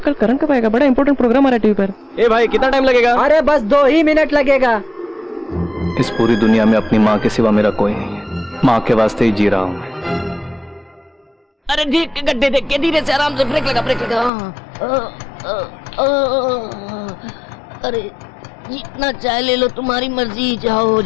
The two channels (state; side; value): drops out; right; at 14.3 s